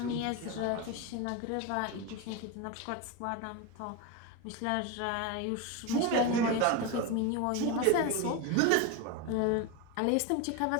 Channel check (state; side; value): different; both; correlation 0.03